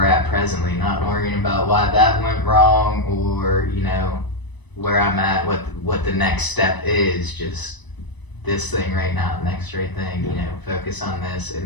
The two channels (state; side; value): late; right; 1.0 ms